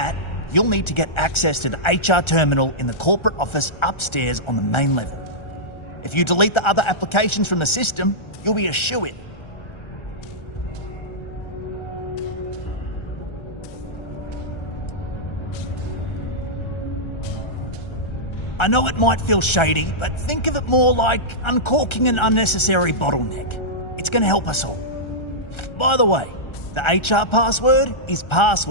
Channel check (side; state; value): right; late; 1.3 ms